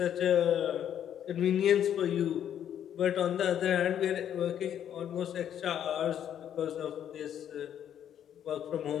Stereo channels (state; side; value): quieter; right; 9.8 dB